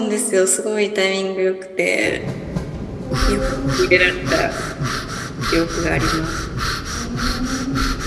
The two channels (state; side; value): identical; both; correlation 1.00